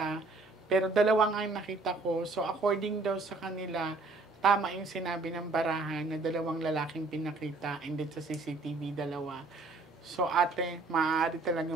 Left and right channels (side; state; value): left; quieter; 3.5 dB